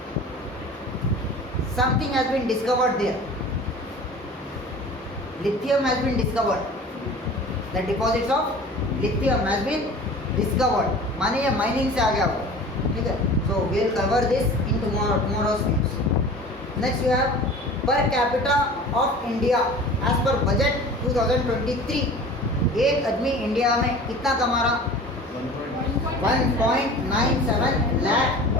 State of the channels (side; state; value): both; normal; correlation 0.41